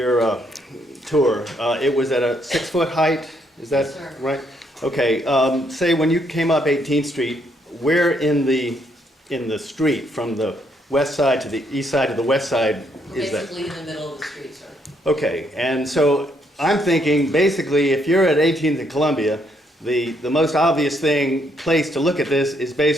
tour, it was at a 6-foot height, is that Yes, sir. right? Okay, say when you came up 18th Street, where in the street, from the west side to the east side to the west side is that? Basically in the middle of the street, sir. Okay, and so I'm thinking, basically, if you're at 18th and Columbia, the most obvious place to look at this is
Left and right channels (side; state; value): both; normal; correlation 0.73